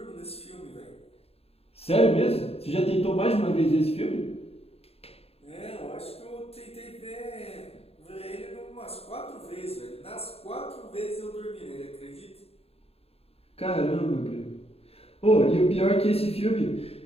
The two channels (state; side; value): late; right; 0.29 ms